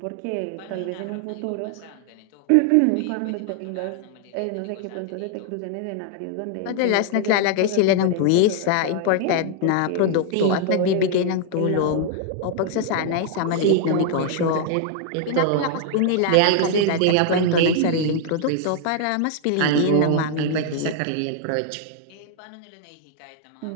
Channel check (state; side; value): different; both; correlation -0.01